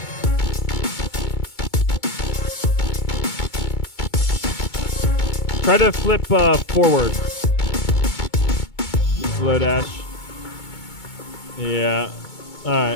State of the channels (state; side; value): late; right; 2.2 ms